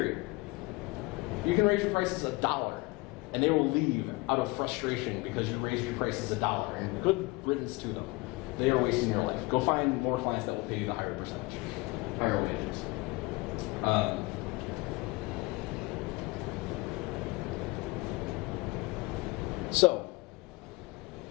You can raise your prices $1, and they will leave out of frustration because you raised your prices $1. And good riddance to them. They are wasting your life. Go find more clients that will pay you the higher percentage, higher wages. So,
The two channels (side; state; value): right; quieter; 23.7 dB